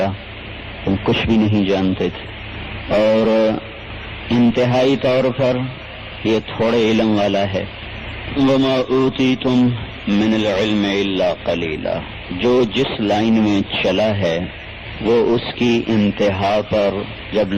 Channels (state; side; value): identical; both; correlation 1.00